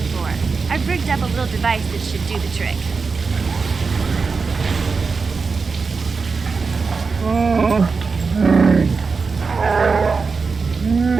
I've rigged up a little device that should do the trick.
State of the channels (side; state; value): left; quieter; 4.7 dB